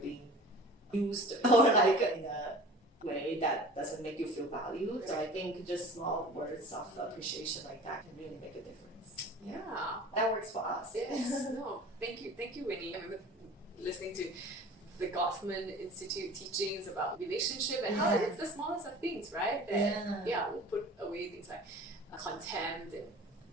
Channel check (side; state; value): both; normal; correlation 0.42